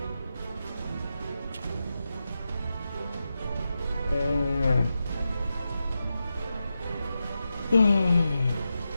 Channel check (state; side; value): inverted; both; correlation -0.89